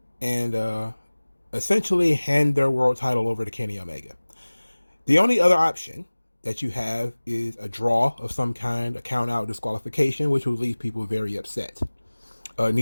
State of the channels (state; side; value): inverted; both; correlation -1.00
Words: and essentially hand their world title over to Kenny Omega. The only other option that you have is a draw of some kind, a count out disqualification, which will leave people very upset.